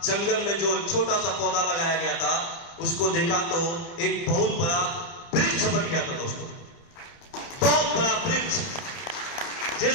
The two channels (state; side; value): late; right; 30 ms